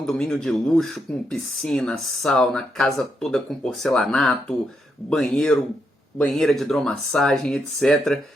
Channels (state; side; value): normal; both; correlation 0.80